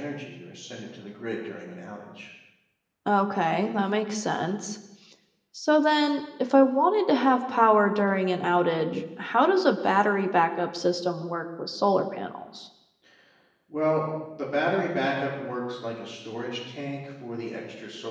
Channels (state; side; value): identical; both; correlation 1.00